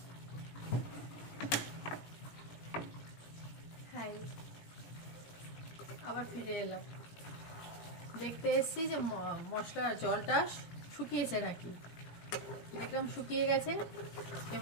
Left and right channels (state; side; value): late; right; 18 ms